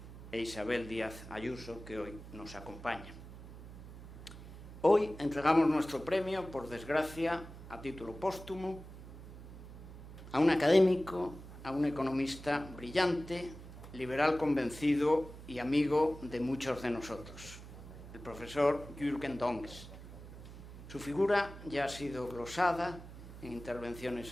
e Isabel Díaz Ayuso, que hoy nos acompaña. Hoy entregamos nuestro premio, por desgracia, a título póstumo, a un académico, a un economista brillante, liberal convencido y amigo de muchos de nosotros, el profesor Jürgen Dongues. Su figura ya ha sido glosada en intervenciones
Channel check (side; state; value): right; noise; hum, 14 dB below the sound